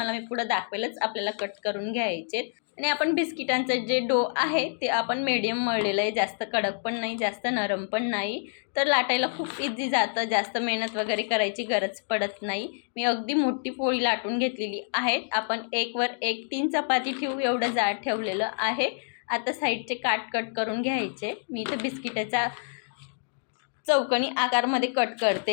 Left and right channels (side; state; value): right; silent; digital silence